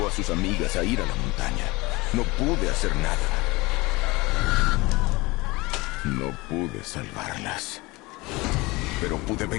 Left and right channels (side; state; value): right; quieter; 22.7 dB